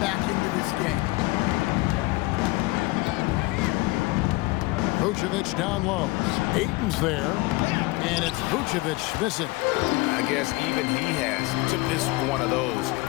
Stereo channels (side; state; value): right; quieter; 22.3 dB